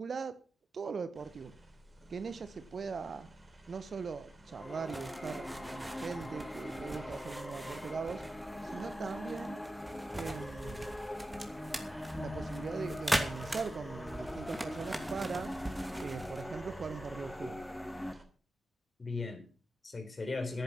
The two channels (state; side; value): normal; both; correlation 0.92